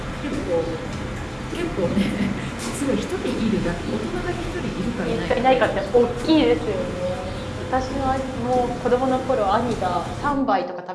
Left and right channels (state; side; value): identical; both; correlation 1.00